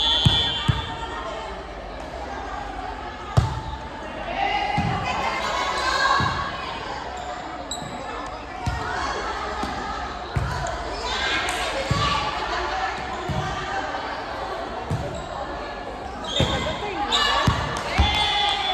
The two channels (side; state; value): both; identical; correlation 1.00